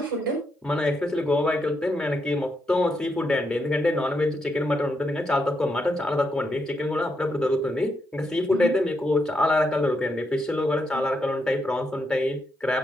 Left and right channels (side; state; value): both; normal; correlation 0.80